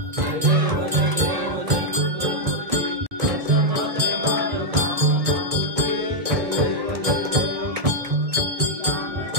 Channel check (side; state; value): left; late; 1.8 ms